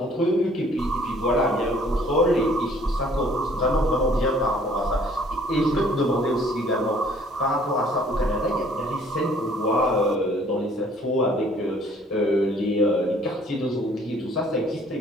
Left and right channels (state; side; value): normal; both; correlation 0.58